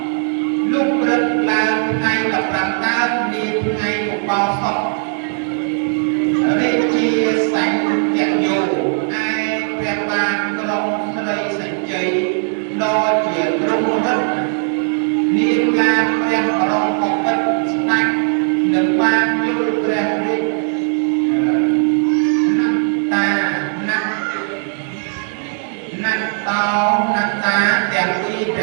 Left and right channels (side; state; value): left; silent; 61 dB below the other